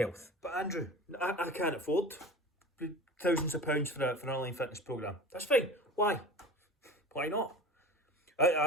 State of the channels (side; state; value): both; normal; correlation 0.35